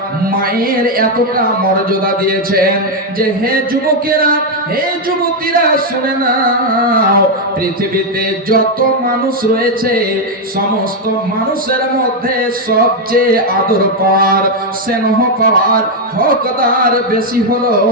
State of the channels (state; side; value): normal; both; correlation 0.03